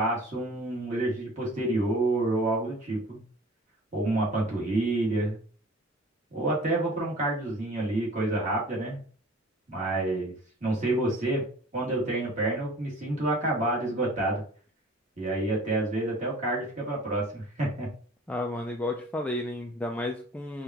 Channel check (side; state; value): both; normal; correlation 0.45